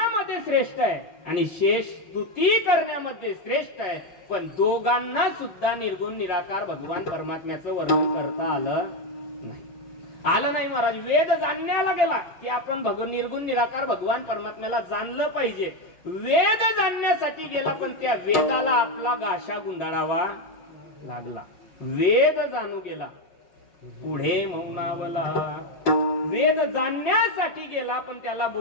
श्रेष्ठ आहे आणि शेष स्तुती करण्यामध्ये श्रेष्ठ आहे. पण दोघांना सुद्धा निर्गुण निराकार भगवान परमात्म्याचं वर्णन करता आलं नाही महाराज. वेद जाणण्याला गेला की आपण निर्गुण निराकार भगवान परमात्म्याला जाणलं पाहिजे. वेद जाणण्यासाठी गेला पण त्या वेदाला आपला गाशा गुंडाळावा लागला. वेद जाणू गेला पुढे मौनावला. वेद जाणण्यासाठी गेला पण त्याला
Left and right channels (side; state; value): right; late; 5.4 ms